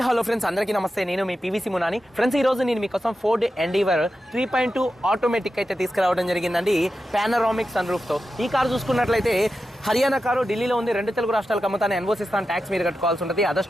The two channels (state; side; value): normal; both; correlation 0.90